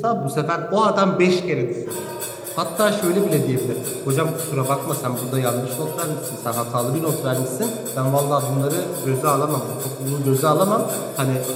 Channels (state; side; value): identical; both; correlation 1.00